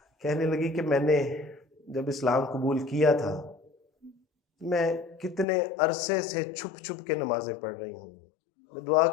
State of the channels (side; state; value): right; drops out; at 5.5 s